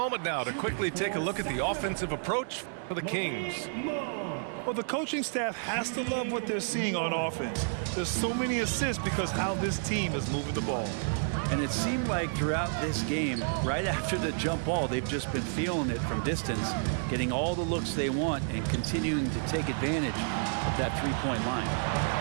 now to quickly take a look at the offensive approach for the Kings. Well, the coaching staff has to love what they're seeing on offense. There's so many assists because how this team is moving the ball. And it seemed like throughout this game, right after the jump ball, they've just been feeling it from distance, getting all the looks they want and continuing to take advantage of that three-point line.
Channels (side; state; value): left; silent; 57 dB below the other